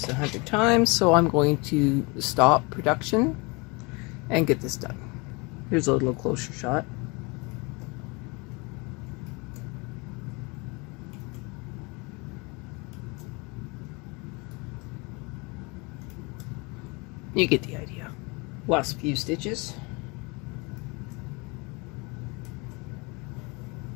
100 times, so I'm going to stop production and get this done. Here's a little closer shot. You get the idea. Last few stitches.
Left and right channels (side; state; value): right; quieter; 28.2 dB